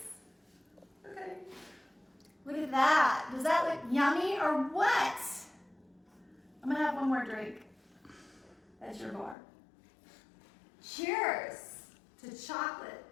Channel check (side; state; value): right; drops out; at 9.3 s